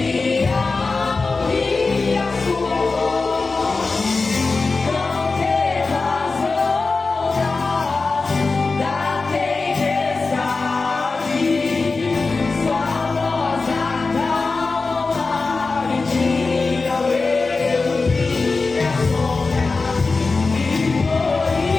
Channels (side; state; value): right; quieter; 4.0 dB